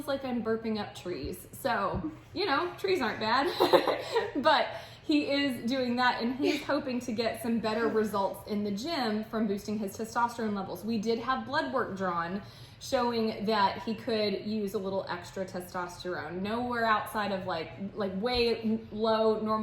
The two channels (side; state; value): both; identical; correlation 1.00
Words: like I'm burping up trees. So, you know, trees aren't bad, but he is doing that, and he's hoping to get some better results in the gym from boosting his testosterone levels. We did have blood work drawn showing that he could use a little extra testosterone, nowhere outside of like way lower